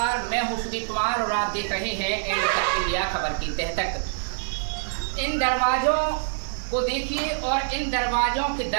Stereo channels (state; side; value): silent; left; digital silence